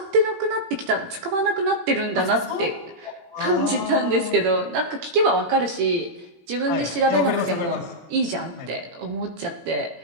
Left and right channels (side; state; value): left; late; 18 ms